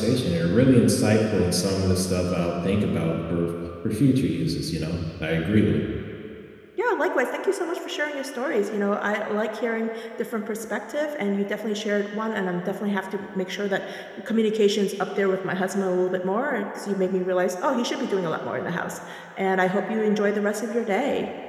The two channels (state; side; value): identical; both; correlation 1.00